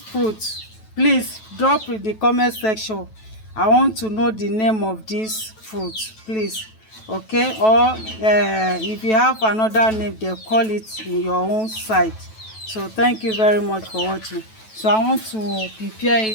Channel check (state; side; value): late; right; 9.2 ms